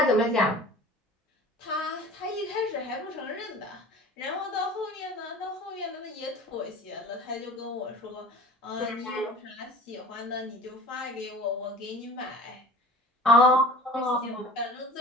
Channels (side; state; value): both; normal; correlation 0.42